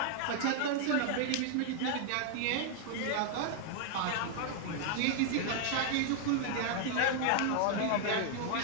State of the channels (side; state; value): both; different; correlation 0.00